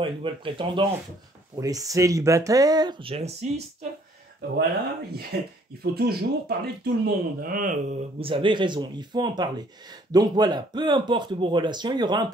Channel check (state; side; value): normal; both; correlation 0.62